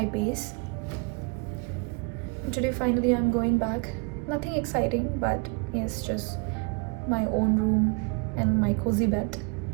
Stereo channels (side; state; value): left; quieter; 30.1 dB